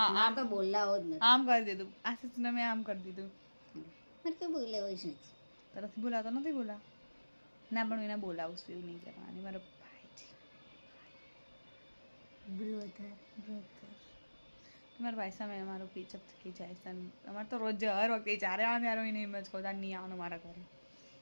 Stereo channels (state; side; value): inverted; both; correlation -1.00